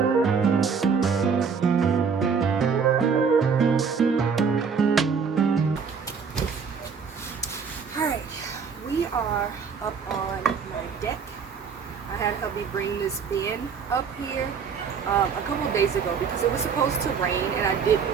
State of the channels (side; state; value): left; quieter; 6.0 dB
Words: Alright, we are up on my deck. I had hubby bring this bin up here a couple of days ago because it was supposed to rain and I